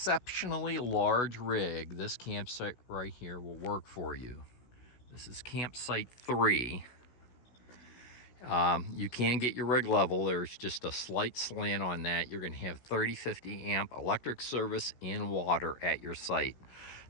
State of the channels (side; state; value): right; late; 16 ms